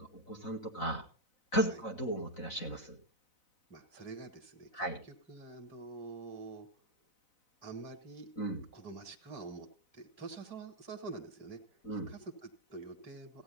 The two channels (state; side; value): late; right; 4.0 ms